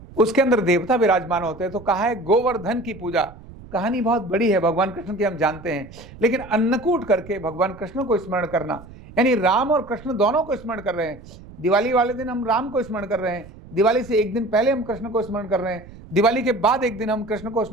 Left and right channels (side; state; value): right; noise; rumble, 18 dB below the sound